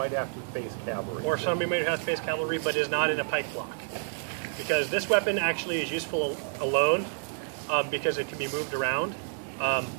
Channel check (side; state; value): left; silent; 58 dB below the other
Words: have to face cavalry. Or somebody who has to face cavalry but is not in a pike block. Because this weapon actually is useful alone, because it can be moved around,